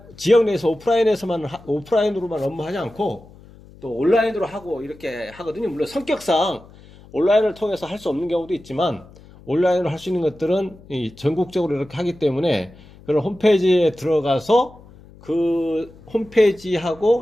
지역 내에서 오프라인으로만 업무하지 않고 또 온라인으로 하고 이렇게 하거든요. 물론 성격상 온라인을 통해서 할 수 없는 경우도 있지만 온라인으로 할 수 있는 것들은 전국적으로 이렇게 하기 때문에 그런 홈페이지에 들어가서 그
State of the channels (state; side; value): noise; left; hum, 23 dB below the sound